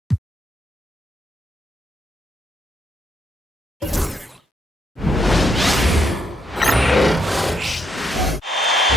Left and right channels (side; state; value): both; normal; correlation 0.76